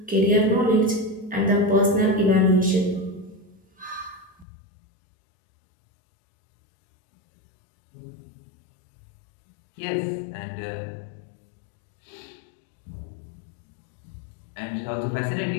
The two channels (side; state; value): right; drops out; at 4.5 s